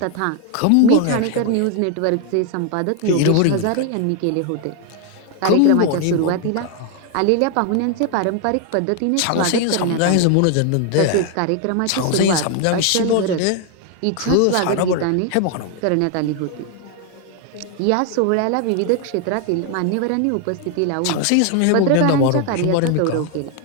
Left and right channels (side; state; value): both; different; correlation 0.01